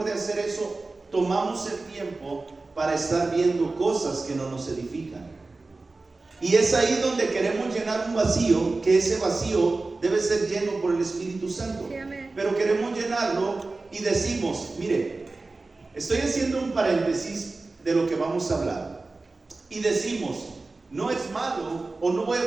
de hacer eso, tomamos el tiempo para estar viendo cosas que no nos edifican? Y es ahí donde queremos llenar un vacío, que ese vacío debe ser lleno por el Espíritu Santo. Sí, pero queremos llenarlo y decimos, mire, estoy haciendo un paréntesis de lo que vamos a hablar. Y decimos, no es malo o no voy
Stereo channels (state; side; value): quieter; left; 3.5 dB